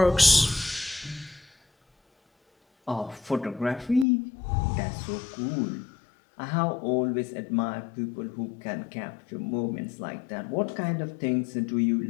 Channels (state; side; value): drops out; right; at 4.0 s